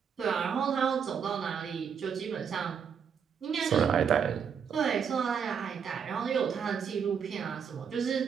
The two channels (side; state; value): left; quieter; 7.1 dB